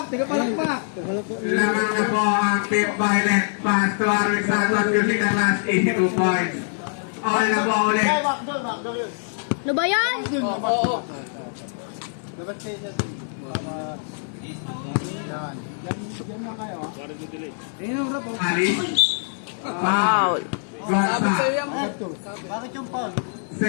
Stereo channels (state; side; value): silent; right; digital silence